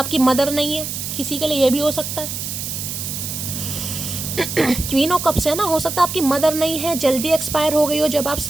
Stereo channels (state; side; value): noise; right; hiss, 5 dB below the sound